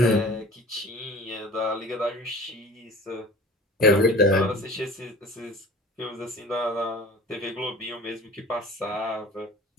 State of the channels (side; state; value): both; normal; correlation 0.43